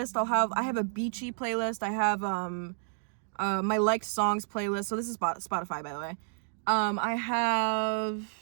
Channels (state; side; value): silent; left; digital silence